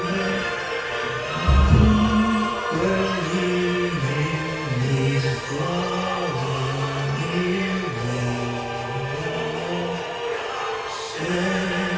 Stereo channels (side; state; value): both; identical; correlation 1.00